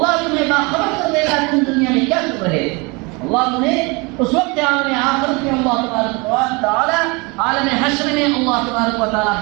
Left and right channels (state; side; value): quieter; left; 27.5 dB